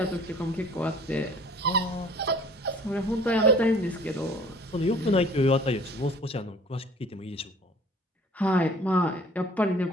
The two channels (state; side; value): normal; both; correlation 0.51